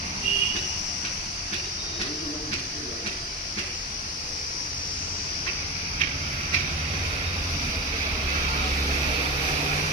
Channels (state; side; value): normal; both; correlation 0.23